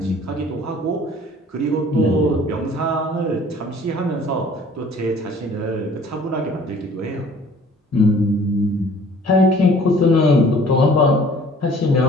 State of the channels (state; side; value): normal; both; correlation 0.52